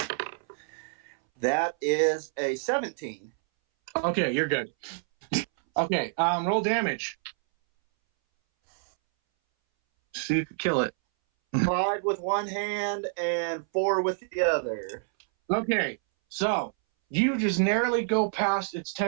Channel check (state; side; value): silent; left; 60 dB below the other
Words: That is a 17. Okay, you're good. Okay, roll damage. See if you can kill it. 5 with one hand and 4 with the other. Okay, so you just narrowly go past its